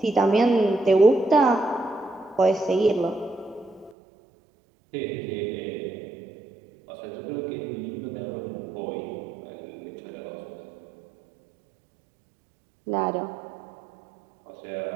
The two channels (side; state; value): left; drops out; at 4.0 s